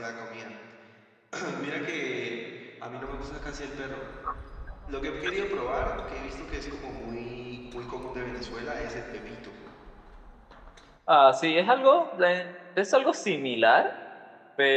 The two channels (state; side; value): identical; both; correlation 1.00